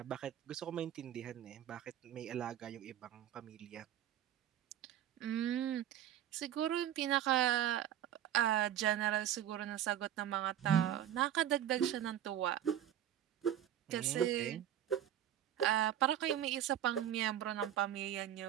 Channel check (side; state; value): left; quieter; 11.2 dB